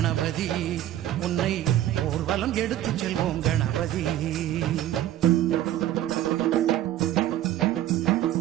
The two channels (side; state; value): left; quieter; 12.9 dB